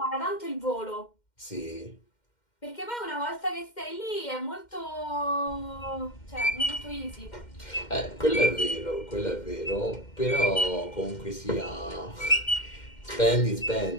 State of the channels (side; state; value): right; late; 2.1 ms